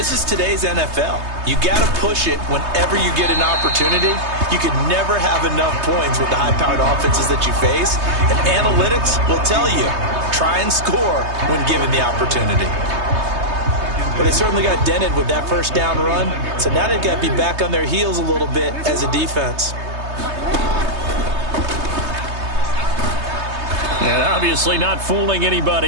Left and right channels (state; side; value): late; left; 3.2 ms